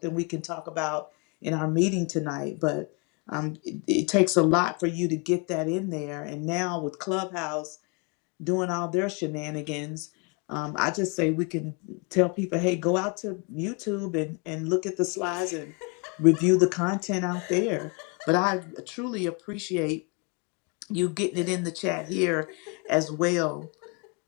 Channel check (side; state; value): right; quieter; 32.6 dB